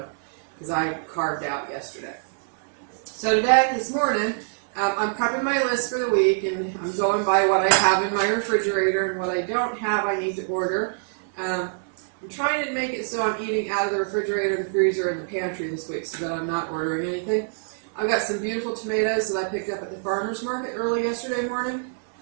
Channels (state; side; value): silent; left; digital silence